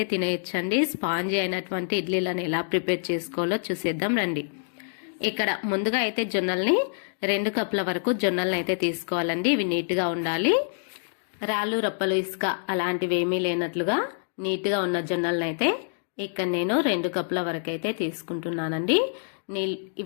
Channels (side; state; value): right; silent; digital silence